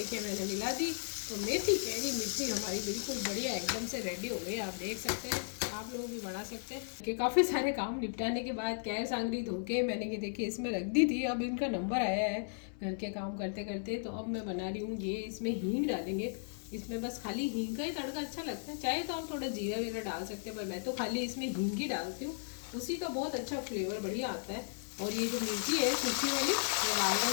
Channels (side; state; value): right; silent; 54 dB below the other